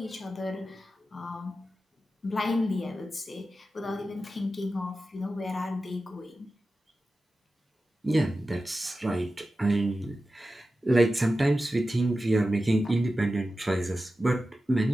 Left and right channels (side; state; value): both; normal; correlation 0.93